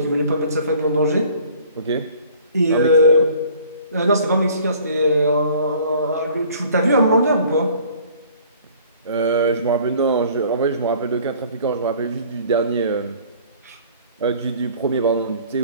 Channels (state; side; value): inverted; both; correlation -0.52